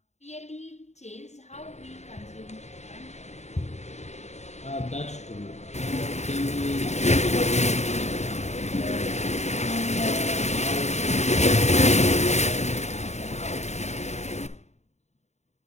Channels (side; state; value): right; late; 0.32 ms